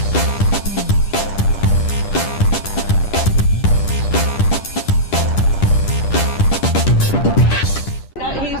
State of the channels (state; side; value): late; right; 10 ms